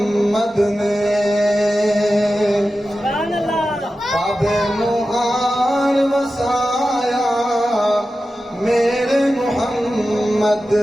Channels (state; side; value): normal; both; correlation 0.93